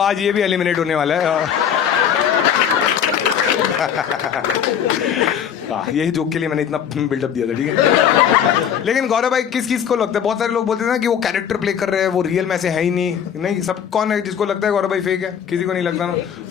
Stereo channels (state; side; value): quieter; right; 8.6 dB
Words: ये भी एलिमिनेट होने वाला है। यही जोक के लिए मैंने इतना बिल्डअप दिया था, ठीक है। लेकिन गौरव भाई किस को लगता है, बहुत सारे लोग बोलते हैं ना कि वो कैरेक्टर प्ले कर रहे हैं, वो रियल में से है ही नहीं। सब कौन है जिसको लगता है गौरव भाई फेक है? किसी को नहीं लगता ना।